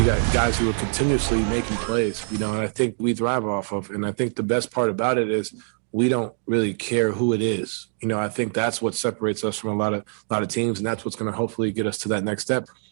got guys who are continuously making plays, and I think we thrive off of. And I think the best part about it is we don't really care who it is. I think that's what separates us from a lot of teams, and that's what's going to hopefully get us to that next step.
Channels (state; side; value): silent; left; digital silence